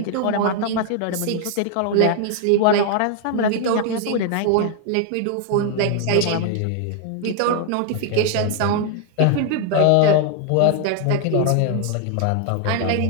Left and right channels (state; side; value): different; both; correlation 0.00